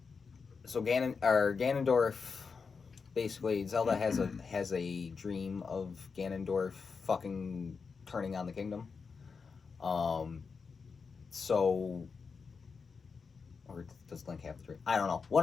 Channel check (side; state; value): right; quieter; 5.2 dB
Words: so Ganondorf, basically Zelda has a dream of Ganondorf fucking turning on the kingdom. So, or does Link have the dream? I don't know. One